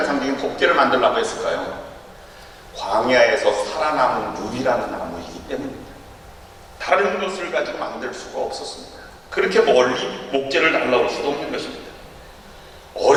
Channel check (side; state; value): both; identical; correlation 1.00